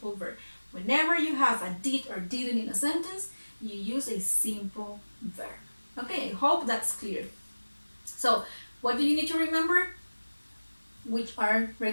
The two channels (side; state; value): both; inverted; correlation -1.00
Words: verb. Whenever you have a did or didn't in a sentence, you use a simple verb. Okay, I hope that's clear. So, what do you need to remember? Which are